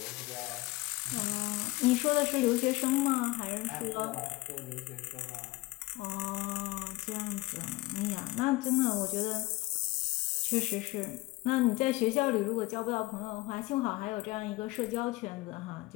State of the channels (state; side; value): quieter; right; 20.3 dB